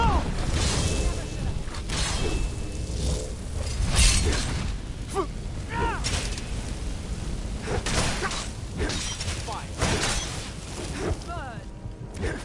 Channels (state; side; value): identical; both; correlation 1.00